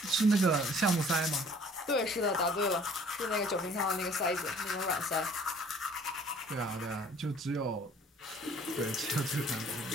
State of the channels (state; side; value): normal; both; correlation 0.54